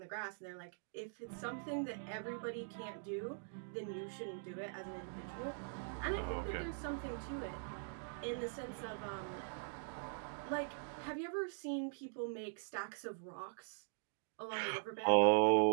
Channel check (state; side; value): silent; left; digital silence